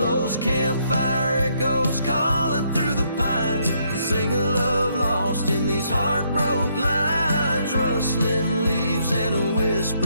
campfire echoes calling through the pines sing a love lost in these heartbroken lines. Rustling leaves and a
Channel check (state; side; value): inverted; both; correlation -0.72